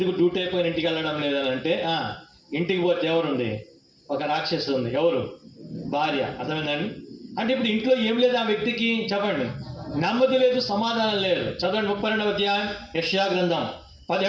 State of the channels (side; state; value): both; identical; correlation 1.00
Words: డ్యూటీ అయిపోయిన ఇంటికి వెళ్ళడం లేదని అంటే ఇంటికి పోతే ఎవరుంది? ఒక రాక్షసు ఉంది. ఎవరు? భార్య. అర్థమైందండి? అంటే ఇప్పుడు ఇంట్లో ఏం లేదు ఆ వ్యక్తికి, చెప్పండి. నెమ్మది లేదు, సమాధానం లేదు. చదవండి 32వ అధ్యాయం యెషయా గ్రంథం